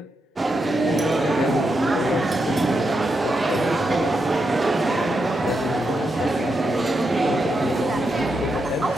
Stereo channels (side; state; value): both; normal; correlation 0.84